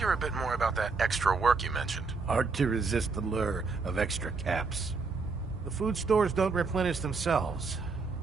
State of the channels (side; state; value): left; quieter; 4.5 dB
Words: a bit more about that extra work you mentioned. Hard to resist the lure of extra caps. The food stores don't replenish themselves,